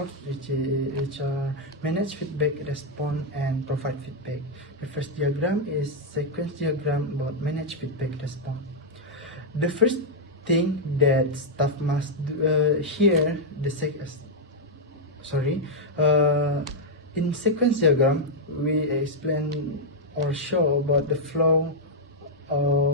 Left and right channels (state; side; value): normal; both; correlation -0.03